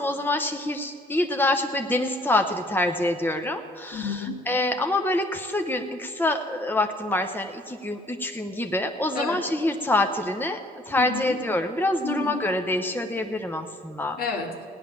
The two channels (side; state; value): both; normal; correlation 0.59